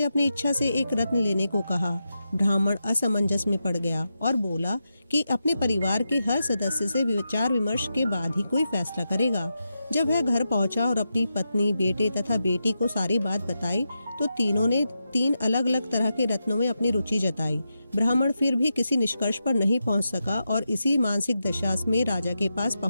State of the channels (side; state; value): both; inverted; correlation -0.88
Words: अपनी इच्छा से एक रत्न लेने को कहा। ब्राह्मण असमंजस में पड़ गया और बोला कि अपने परिवार के हर सदस्य से विचार विमर्श के बाद ही कोई फैसला करेगा। जब वह घर पहुंचा और अपनी पत्नी, बेटे तथा बेटी को सारी बात बताई तो तीनों ने 3 अलग अलग तरह के रत्नों में अपनी रुचि जताई। ब्राह्मण फिर भी किसी निष्कर्ष पर नहीं पहुंच सका और इसी मानसिक दशा में राजा के पास